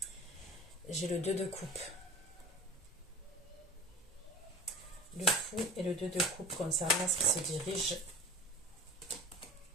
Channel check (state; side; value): normal; both; correlation 0.37